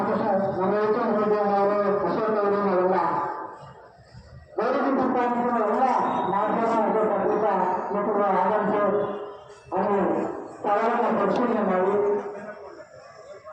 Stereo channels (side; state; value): both; identical; correlation 1.00